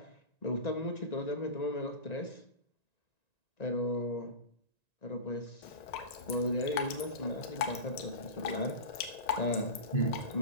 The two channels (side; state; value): right; late; 1.9 ms